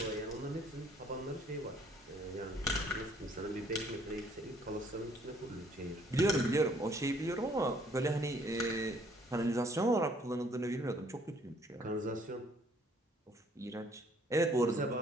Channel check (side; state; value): both; normal; correlation 0.62